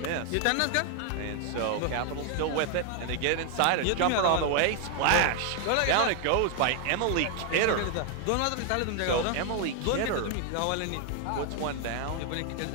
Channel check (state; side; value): different; both; correlation 0.00